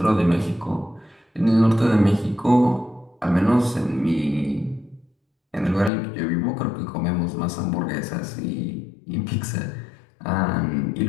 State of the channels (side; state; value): right; drops out; at 5.9 s